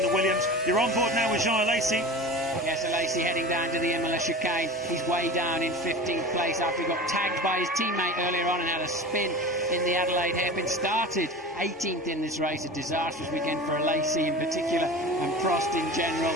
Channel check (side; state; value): both; normal; correlation 0.34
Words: the Williams. You're on board now with Jean Alesi. Yes, Alesi heading down to the Imola chicane. He's way down in 15th place after he got tagged by his teammate earlier on and had a spin in the Adelaide hairpin. Started 18th in this race, a disastrous weekend for Alesi in particular and Prost in general.